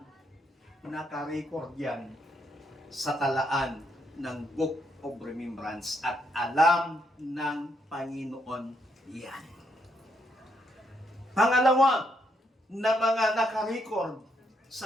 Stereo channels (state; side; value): normal; both; correlation 0.76